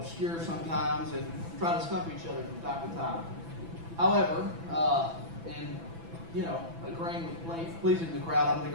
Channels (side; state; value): left; late; 6.0 ms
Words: sometimes and try to stump each other from time to time. However, in agreeing with pleasing the crowd, I'm going